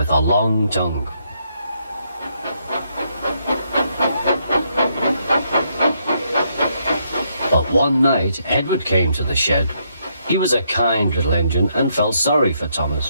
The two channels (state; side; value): inverted; both; correlation -0.75